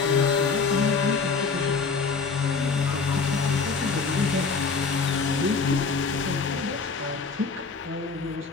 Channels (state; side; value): quieter; right; 4.8 dB